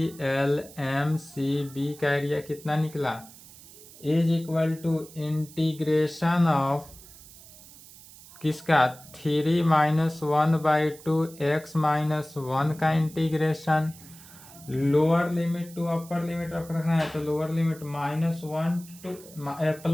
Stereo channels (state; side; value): noise; right; hiss, 20 dB below the sound